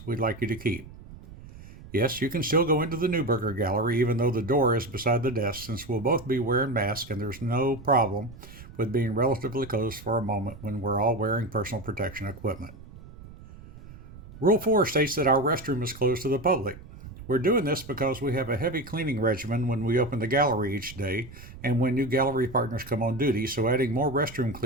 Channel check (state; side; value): noise; right; rumble, 17 dB below the sound